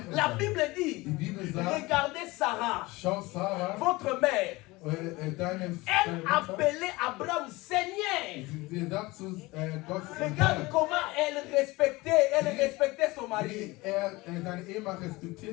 La Bible dit, regardez Sarah, votre mère. Elle appelait Abraham Seigneur. Regarde comment elle respectait son mari.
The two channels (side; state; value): right; quieter; 21.8 dB